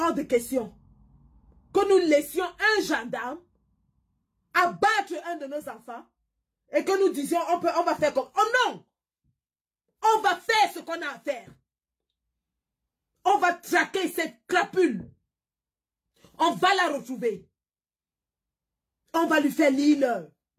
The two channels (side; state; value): both; identical; correlation 1.00